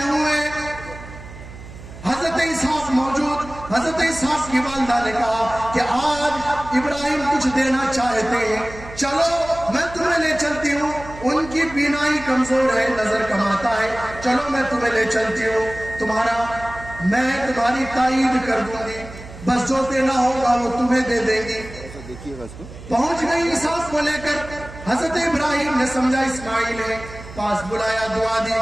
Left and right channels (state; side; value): noise; right; hum, 15 dB below the sound